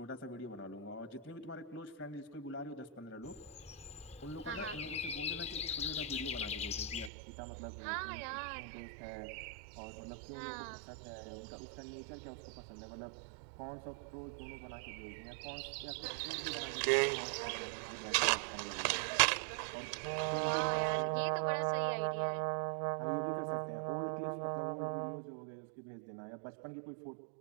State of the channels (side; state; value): left; drops out; at 7.1 s